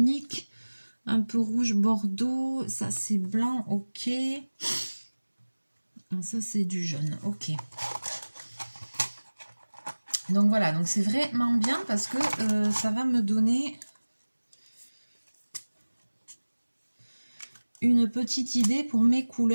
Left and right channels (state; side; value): inverted; both; correlation -1.00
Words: un peu rouge bordeaux. Ça, c'est blanc, ok. Ça, c'est du jaune, ok. Donc voilà, donc c'est vraiment bien parce que ça va me donner une petite idée pour mes